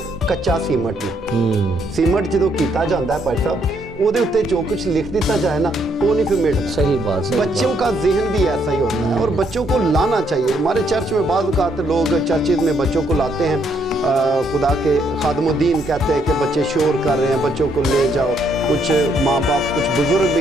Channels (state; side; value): normal; both; correlation 0.72